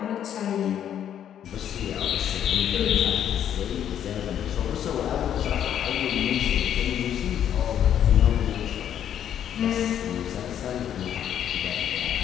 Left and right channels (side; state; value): right; quieter; 9.9 dB